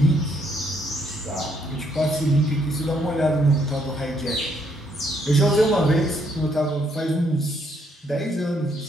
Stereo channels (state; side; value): normal; both; correlation 0.71